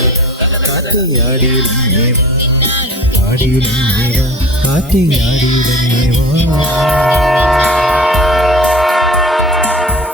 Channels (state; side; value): normal; both; correlation 0.39